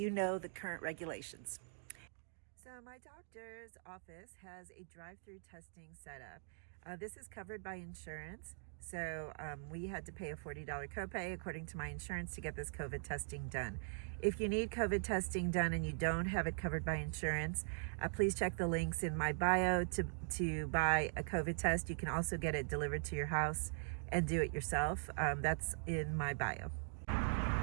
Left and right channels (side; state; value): left; silent; digital silence